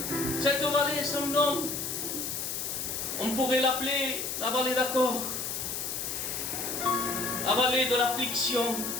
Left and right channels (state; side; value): noise; left; hiss, 3 dB below the sound